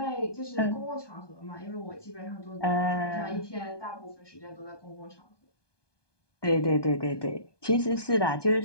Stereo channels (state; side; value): late; right; 1.2 ms